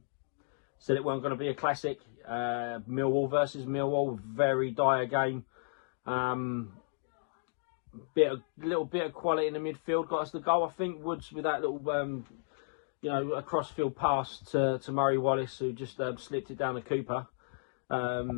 it wasn't going to be a classic. Millwall versus Millwall, very dire game. Little bit of quality in the midfield got us the goal. I think Woods with that little, a cross-field pass to Murray Wallace, who just slipped it down to Cooper.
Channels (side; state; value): right; silent; digital silence